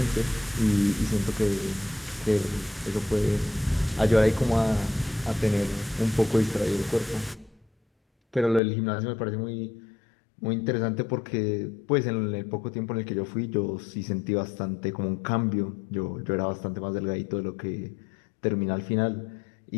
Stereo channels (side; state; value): right; drops out; at 8.6 s